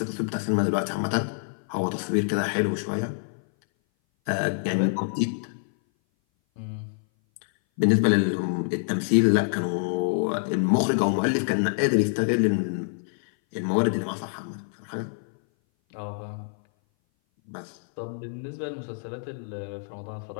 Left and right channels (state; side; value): silent; right; 58 dB below the other